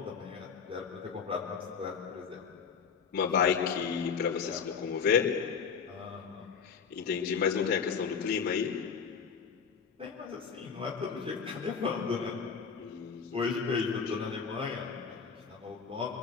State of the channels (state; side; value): quieter; right; 6.3 dB